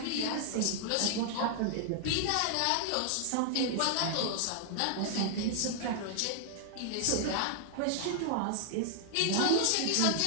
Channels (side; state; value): both; different; correlation 0.00